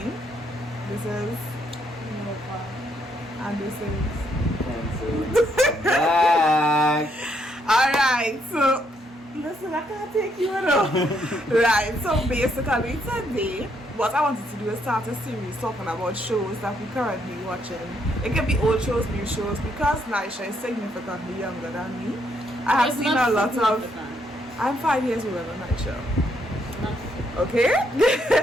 This is Nova, and this is kenson. Alright, so listen, I can't take you enough. Right, so basically today what I wanted to do is start a series talking about shows that we currently watching. It can be old shows, new shows, because naiesha is significantly younger than me. I have seen a lot of. I'm 5 years older than naiesha. Okay.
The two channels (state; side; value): normal; both; correlation 0.73